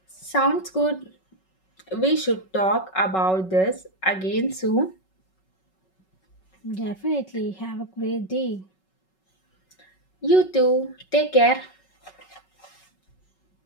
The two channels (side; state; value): right; late; 5.3 ms